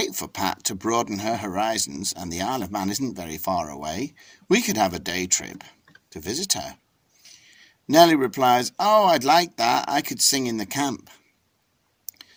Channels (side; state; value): both; identical; correlation 1.00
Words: for Pat to broaden her horizons, and the Isle of Man isn't very far away. We could have a day trip to visit her." Nellie replies, "Oh, I'd like that. I could sing in the camp."